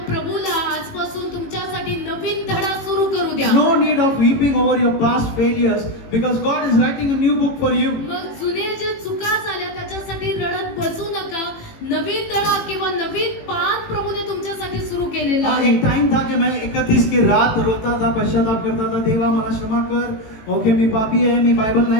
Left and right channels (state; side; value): late; right; 18 ms